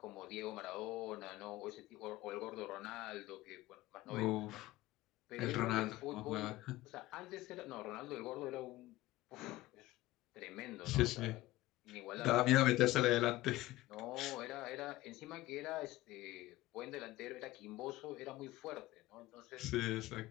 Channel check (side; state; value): right; quieter; 17.5 dB